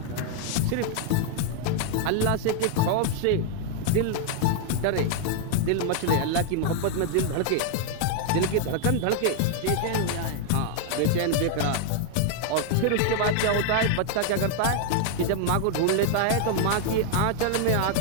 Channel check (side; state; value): both; different; correlation 0.00